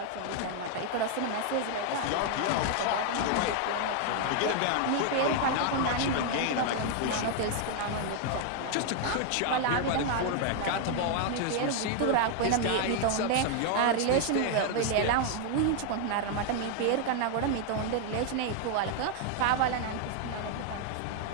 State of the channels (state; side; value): different; both; correlation 0.00